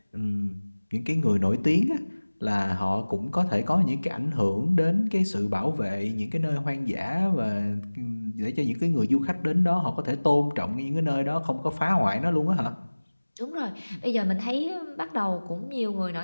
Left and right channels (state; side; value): inverted; both; correlation -1.00